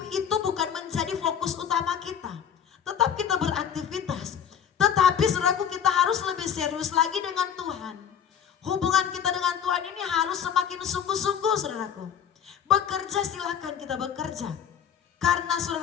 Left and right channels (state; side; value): quieter; right; 8.4 dB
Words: itu bukan menjadi fokus utama kita. Tetap kita beraktivitas. Tetapi saudaraku, kita harus lebih serius lagi dengan Tuhan. Hubungan kita dengan Tuhan ini harus semakin sungguh-sungguh, saudaraku. Bekerja, silakan kita bekerja. Karena